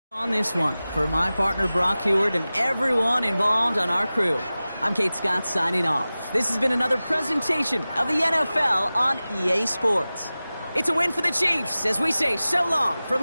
On this one, for my partner Brock Heward and everyone involved on our crew, I'm Kate Scott signing off. This has been another presentation of the NFL on EA Sports. It's a win for the Chiefs as we say so long from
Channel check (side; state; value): both; inverted; correlation -0.97